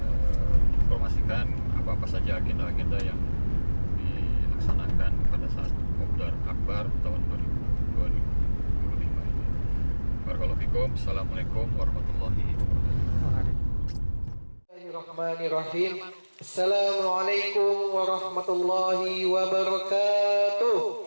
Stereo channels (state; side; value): inverted; both; correlation -1.00